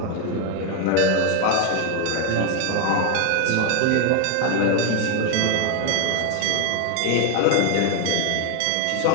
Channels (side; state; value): both; different; correlation 0.01